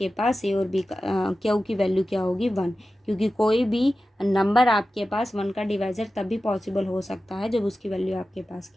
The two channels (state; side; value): normal; both; correlation 0.94